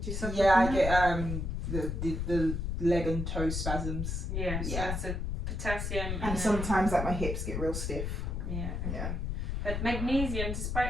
you suffer from I that? get the leg and toe spasms. So potassium. And sometimes like my hips get real stiff. But magnesium,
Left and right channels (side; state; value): left; noise; rumble, 2 dB below the sound